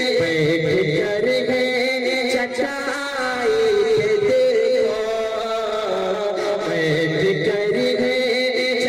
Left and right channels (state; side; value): identical; both; correlation 1.00